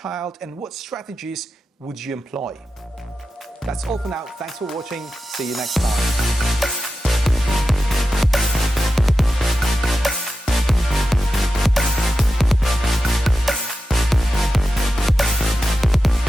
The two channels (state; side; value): normal; both; correlation 0.91